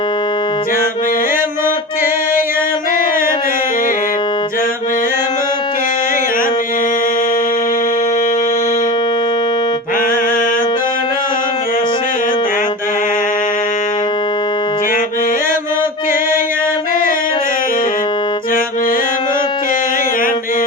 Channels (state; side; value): normal; both; correlation 0.29